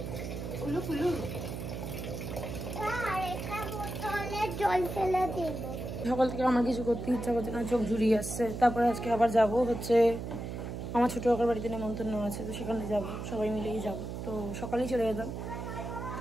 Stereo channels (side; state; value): right; noise; hum, 6 dB below the sound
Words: উলু ফুলু। সকাল থেকে আমার কিছু করতে ইচ্ছা করছে না, চোখ জুড়িয়ে আসছে। তারপরে আজকে আবার যাব হচ্ছে আমার ছোটো কাকার বাড়িতে নেমন্তন্ন আছে, তো সেখানে যাব, সবাই মিলেই যাব। তো সকালেই চলে যেতাম,